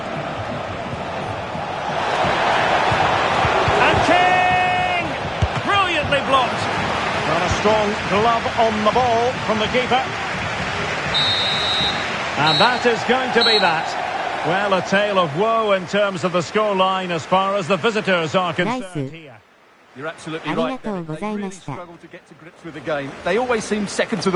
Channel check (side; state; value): both; identical; correlation 1.00